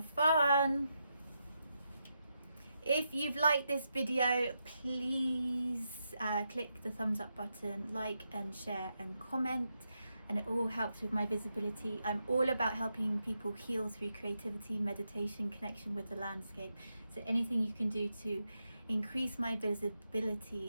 fun! If you've liked this video, please click the thumbs up button, like and share and comment, and it all helps with my visibility. I'm all about helping people heal through creativity, meditation, connection with the landscape. So anything you can do to increase my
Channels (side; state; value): both; inverted; correlation -0.84